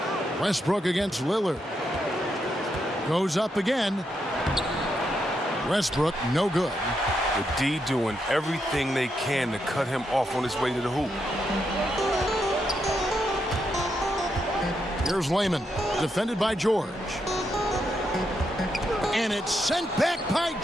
Westbrook against Lillard. Goes up again. Westbrook, no good. The D doing everything they can to cut him off on his way to the hoop. Here's Layman, defended by George. And it's sent back by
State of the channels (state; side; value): normal; both; correlation 0.81